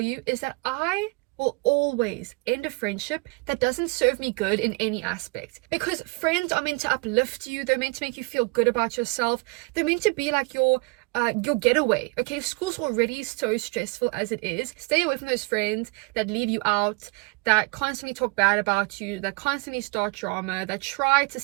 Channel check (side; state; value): left; quieter; 28.8 dB